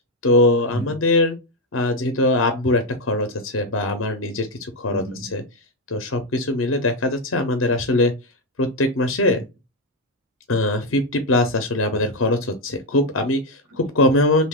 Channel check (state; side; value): normal; both; correlation 0.06